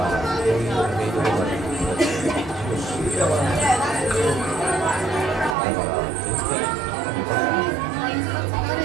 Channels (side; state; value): left; drops out; at 5.6 s